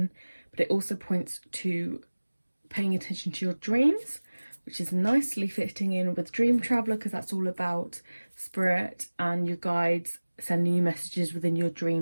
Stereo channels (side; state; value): both; inverted; correlation -1.00